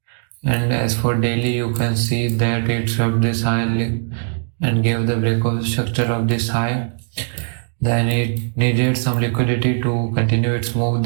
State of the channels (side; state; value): left; silent; digital silence